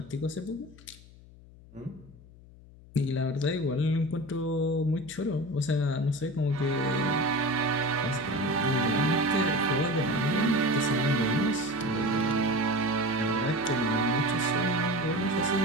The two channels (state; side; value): noise; left; hum, 22 dB below the sound